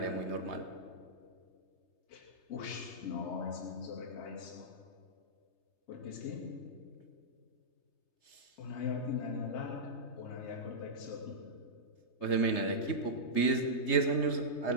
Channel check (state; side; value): late; right; 3.3 ms